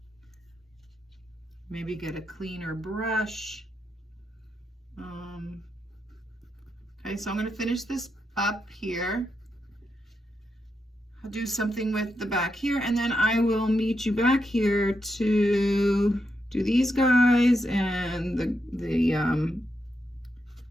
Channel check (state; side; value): normal; both; correlation 0.84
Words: Maybe get a cleaner brush. Okay, so I'm gonna finish this up here. I'll do something with the back here, and then I will meet you back here to do these guys and the